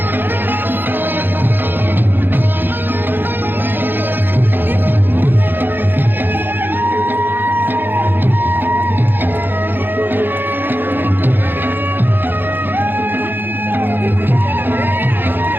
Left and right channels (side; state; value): left; late; 0.095 ms